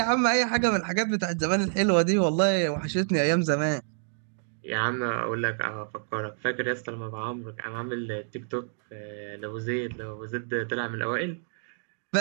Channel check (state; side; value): silent; left; digital silence